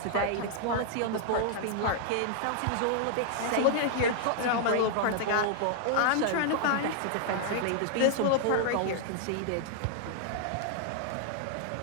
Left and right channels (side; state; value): both; different; correlation -0.01